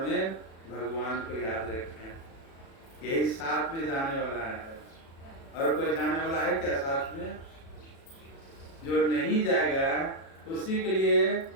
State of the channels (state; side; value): late; right; 36 ms